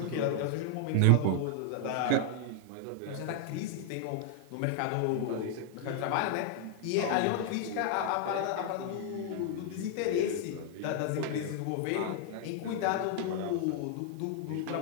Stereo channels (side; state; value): both; different; correlation 0.00